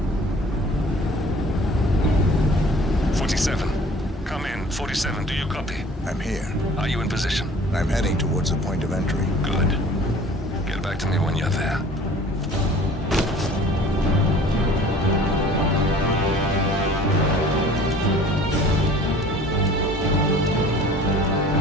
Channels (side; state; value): both; normal; correlation 0.48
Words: Come in. 47, do you copy? I'm here. Are you in position? I'm heading towards the point of entry. Good. Get back to me when you're there.